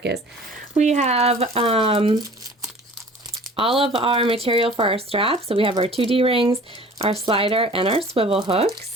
is. We have all of our material for our straps. So we have our 2D rings, our slider, and our swivel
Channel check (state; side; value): normal; both; correlation 0.46